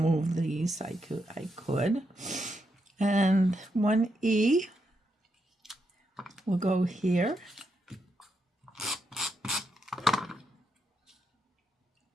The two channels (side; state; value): both; normal; correlation 0.82